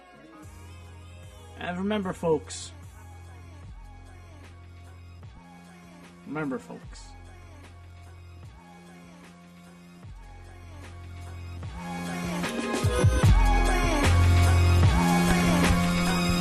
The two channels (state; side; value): identical; both; correlation 1.00